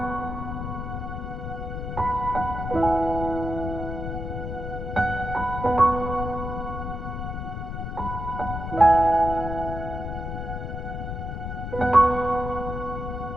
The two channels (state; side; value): noise; left; rumble, 5 dB below the sound